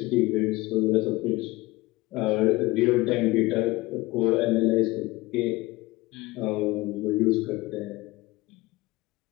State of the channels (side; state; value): right; quieter; 20.6 dB